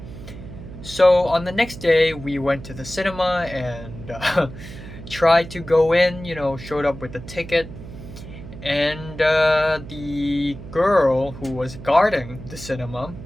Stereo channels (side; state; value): right; noise; hum, 14 dB below the sound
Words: So on the next day, we went to the cinema and tried to go in, showed up with the ticket. And the girl who was guarding the cinema